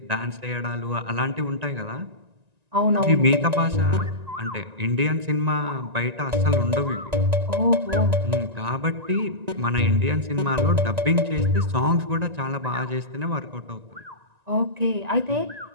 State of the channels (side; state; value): left; late; 1.9 ms